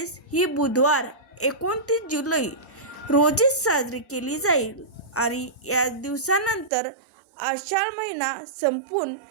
ही बुधवार 29 जुलै रोजीच साजरी केली जाईल. आणि या दिवसानंतर आषाढ महिना संपून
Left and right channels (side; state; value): left; drops out; at 6.7 s